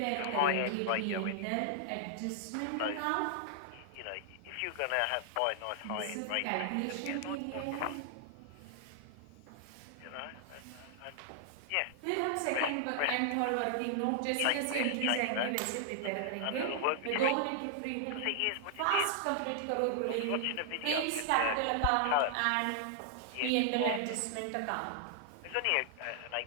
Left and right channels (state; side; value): different; both; correlation -0.01